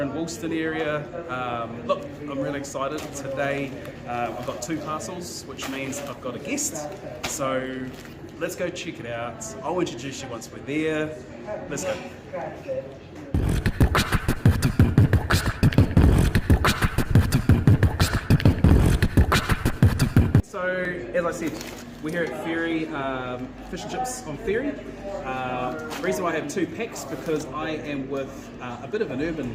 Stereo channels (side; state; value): both; identical; correlation 1.00